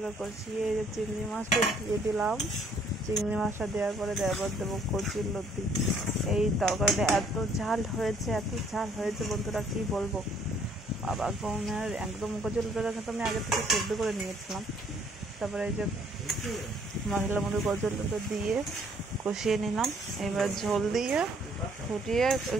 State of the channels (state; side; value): normal; both; correlation 0.63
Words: কষিয়ে এই যে চিংড়ি মাছটা দিয়ে দিলাম। চিংড়ি মাছটা দেওয়ার পরে দেবো কচুর লতি। এই তরকারিটা এত ঝাল হয়েছে বন্ধুরা, কি বলবো। বাবা গমের একদম কচুর লতিটা কিন্তু আমি আগে থেকে সেদ্ধ করে নিয়েছিলাম। তারপরে এই যে মশলার মধ্যে কচুর লতি দিয়ে কষিয়ে নিলাম। এবার ঝোল দিয়ে ফুটিয়ে